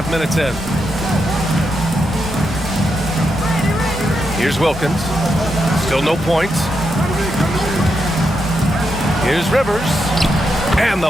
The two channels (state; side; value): normal; both; correlation 0.84